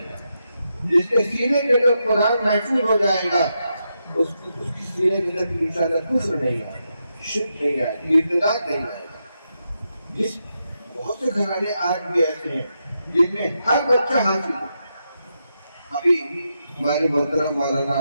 جس کے سینے کے اندر قرآن محفوظ ہو جائے گا اس کی سینے کے اندر انشاءاللہ کفر نہیں آئے گا، شرک نہیں آئے گا، ارتداد نہیں آئے گا. جس بہت سے گھرانے آج بھی ایسے ہیں جن میں ہر بچہ حاصل ہے. ابھی ہمارے محترم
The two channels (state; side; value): inverted; both; correlation -0.85